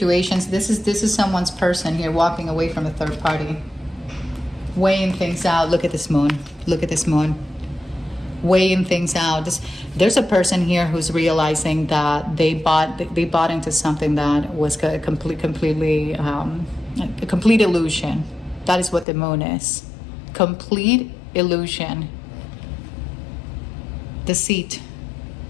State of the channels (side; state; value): right; drops out; at 19.1 s